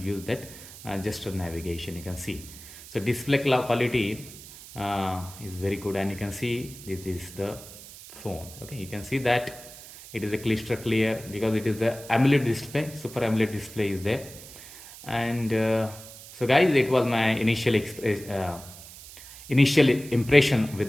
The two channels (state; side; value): noise; right; hiss, 16 dB below the sound